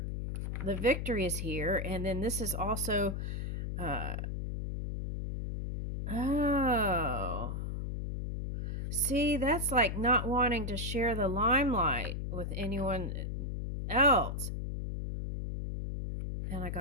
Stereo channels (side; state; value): left; noise; hum, 3 dB below the sound